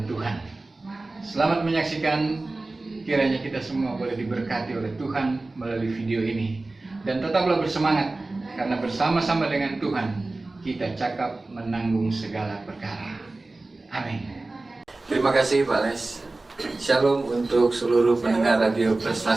Tuhan. Selamat menyaksikan, kiranya kita semua boleh diberkati oleh Tuhan melalui video ini. Dan tetaplah bersemangat, karena bersama-sama dengan Tuhan kita cakap menanggung segala perkara. Amin. Terima kasih Pak Les. Shalom untuk seluruh pendengar Radio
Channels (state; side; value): quieter; left; 3.2 dB